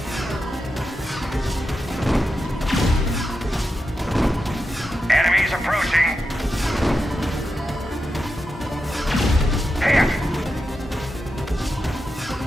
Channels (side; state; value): both; normal; correlation 0.88